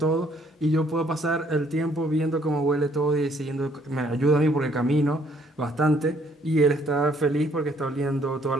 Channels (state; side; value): normal; both; correlation 0.65